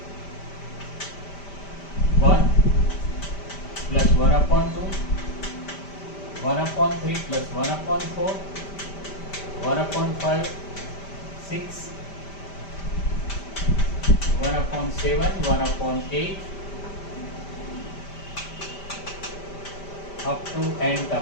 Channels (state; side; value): late; right; 5.1 ms